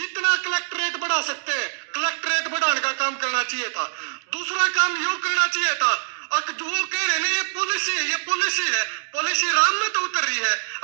कलेक्टरेट बढ़ा सकते हैं कलेक्टरेट बढ़ाने का काम करना चाहिए था। दूसरा काम यो करना चाहिए था, जो कह रहे हैं ये पॉलिसी है, पॉलिसी राम में तो उतर रही है,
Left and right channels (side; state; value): left; silent; digital silence